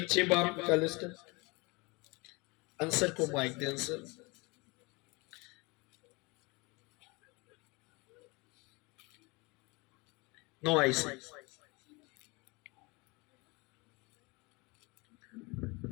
बाप निकाले, आंसर को माइक दे, आंसर। No ice.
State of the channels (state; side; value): quieter; right; 26.6 dB